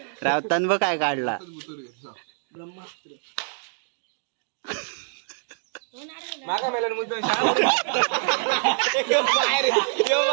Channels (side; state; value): left; silent; digital silence